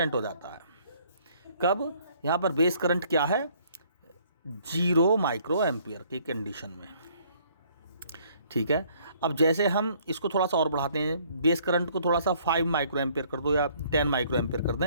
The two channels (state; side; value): inverted; both; correlation -0.62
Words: हो जाता है। कब, यहाँ पर बेस करंट क्या है, 0 माइक्रो एम्पियर की कंडीशन में, ठीक है। अब जैसे हम इसको थोड़ा सा और बढ़ाते हैं, बेस करंट को थोड़ा सा 5 माइक्रो एम्पियर कर दो या 10 माइक्रो एम्पियर कर